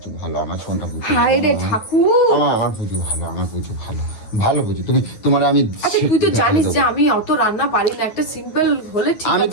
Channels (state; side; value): late; right; 9.5 ms